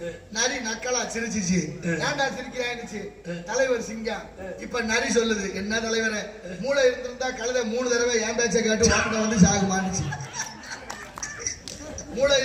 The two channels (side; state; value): both; identical; correlation 1.00